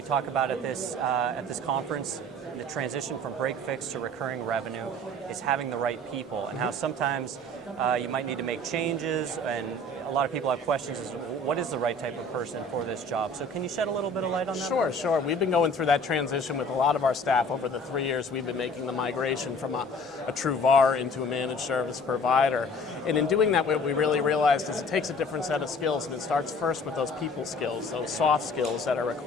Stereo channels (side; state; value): both; normal; correlation 0.49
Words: about at this conference, the transition from break fix to recurring revenue, is having the right people, and how sometimes you might need to make changes, and a lot of people have questions as to what is the right type of person for this job. So can you shed a little bit of light on that? Sure. We've been going through that transition with a lot of our staff over the 3 years. We've been making the migration from a true VAR into a managed service provider. And in doing that, what we really realized is it takes a different set of skills, and it starts first with those people skills, those soft skills that are